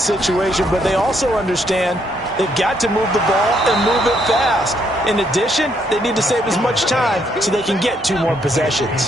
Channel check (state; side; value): normal; both; correlation 0.72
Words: situation, but they also understand they've got to move the ball and move it fast. In addition, they need to save as much time so they can get 2 more